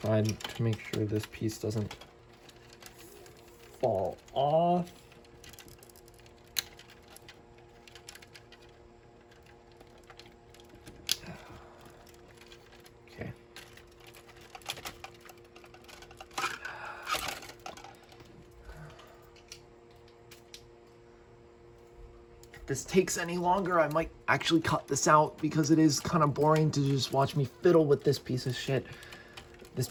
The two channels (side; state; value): both; identical; correlation 1.00